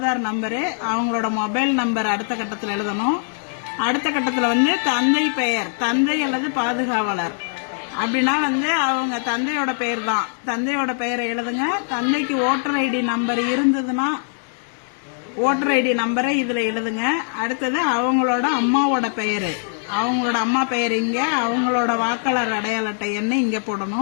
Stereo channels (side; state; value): right; silent; digital silence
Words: நம்பரு, அவங்களோட மொபைல் நம்பர் அடுத்த கட்டத்தில் எழுதணும். அடுத்த கட்டத்தில் தந்தை பெயர், தந்தை அல்லது பாதுகாவலர் அப்படின்னா அவங்க தந்தையோட பெயர் தான். தந்தையோட பெயரை எழுதுங்க. தந்தைக்கு ஓட்டர் ஐடி நம்பர் இருந்ததுன்னா ஓட்டர் ஐடி நம்பரை இதுல எழுதுங்க. அடுத்தது அவங்களோட அம்மாவோட பெயரு, அவங்களோட அம்மா பெயர் இங்க, அவங்களோட வாக்காளர் அடையாள அட்டை எண்ணை இங்க